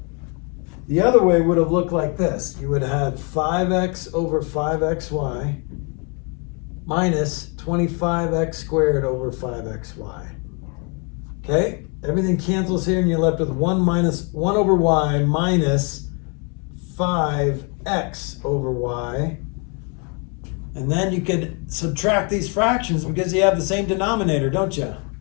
would have looked like this. You would have had 5x over 5xy minus 25x squared over 5xy. Okay? Everything cancels here and you're left with 1 over y minus 5x over y. And then you could subtract these fractions because you have the same denominator, don't you?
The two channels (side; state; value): right; quieter; 35.1 dB